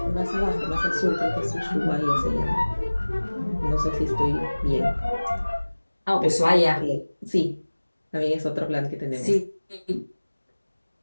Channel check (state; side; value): inverted; both; correlation -1.00